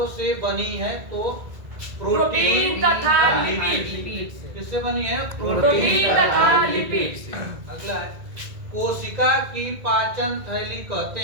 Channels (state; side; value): late; left; 2.0 ms